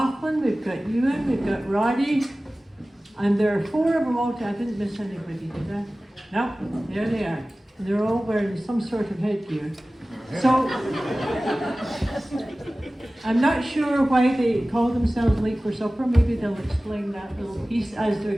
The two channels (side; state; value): both; normal; correlation 0.97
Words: we've got Ewan, we've got Roddy, and there are 4 of them all. I didn't miss anybody, did I? No, there they are. And they're all wearing some sort of headgear. So, I'm not sure why they call themselves Late for Supper. Maybe they'll explain that little piece as they're